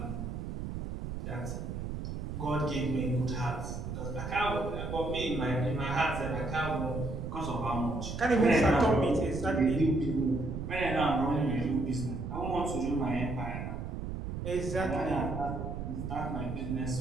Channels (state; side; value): noise; right; rumble, 5 dB below the sound